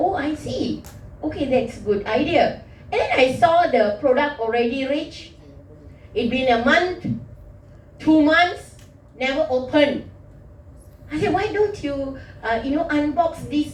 see. Okay, that's a good idea. And then I saw the product already reached. It's been a month, 2 months, never opened. I said, why don't you, unbox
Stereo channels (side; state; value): both; identical; correlation 1.00